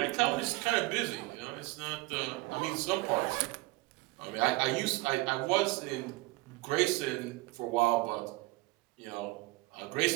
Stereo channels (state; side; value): quieter; left; 22.4 dB